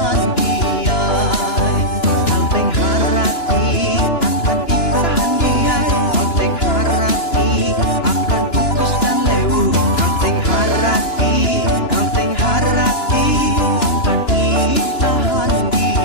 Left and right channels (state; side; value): late; right; 2.9 ms